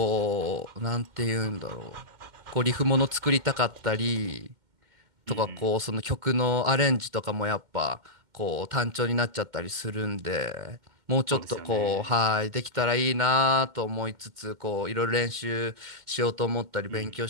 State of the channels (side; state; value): left; late; 2.1 ms